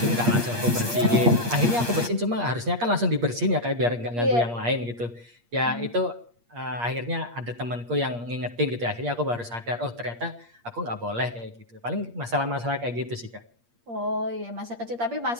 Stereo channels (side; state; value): left; late; 8.5 ms